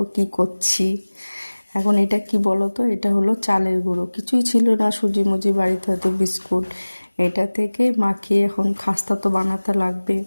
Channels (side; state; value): both; inverted; correlation -1.00